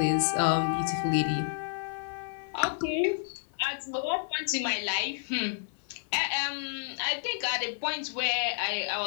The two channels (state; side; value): silent; right; 56 dB below the other